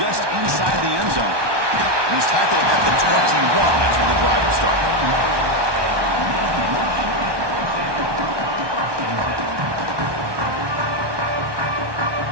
inside the end zone. And he's tackled at the 21. That's where the drive will start.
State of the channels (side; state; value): left; late; 1.2 ms